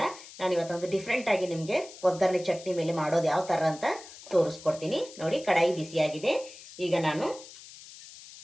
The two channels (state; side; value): noise; left; hiss, 17 dB below the sound